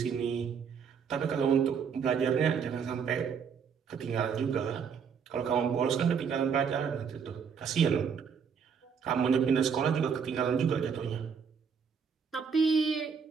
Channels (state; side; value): quieter; left; 6.6 dB